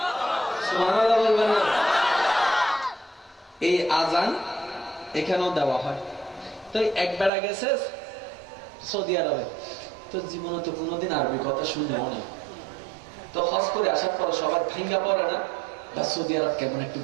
এই আজান এখানেও দেওয়া হয়। তো এক বেড়া গেছে সৌদি আরবে, তো জীবনে তো কোনোদিন আরবি কথা শুনলেও না। তো হজ করে আসার পর সবার ভাঙ্গা পড়ে না, বা সৌদি আরব কেমন একটু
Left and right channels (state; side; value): drops out; left; at 7.3 s